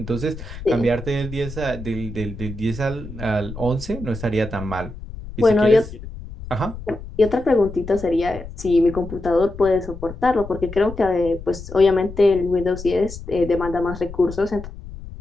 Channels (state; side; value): noise; left; rumble, 12 dB below the sound